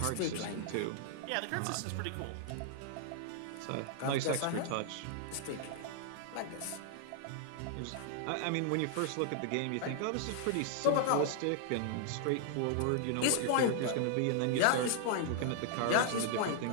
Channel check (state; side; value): different; both; correlation 0.00